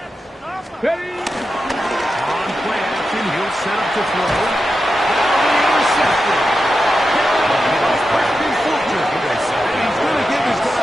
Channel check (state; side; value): normal; both; correlation 0.90